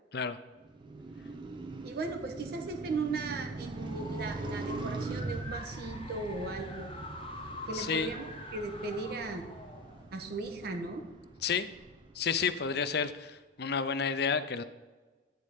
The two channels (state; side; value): normal; both; correlation 0.26